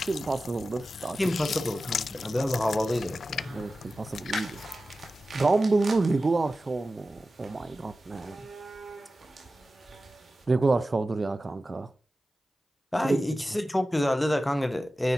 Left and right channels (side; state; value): both; normal; correlation 0.94